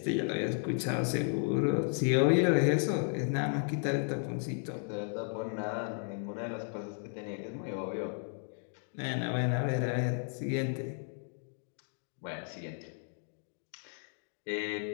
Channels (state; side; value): silent; right; 55 dB below the other